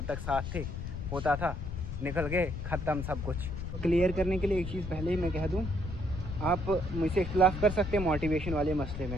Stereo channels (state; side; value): noise; left; rumble, 6 dB below the sound